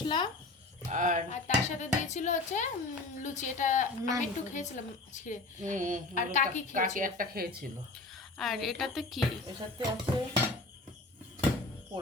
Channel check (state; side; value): quieter; right; 3.1 dB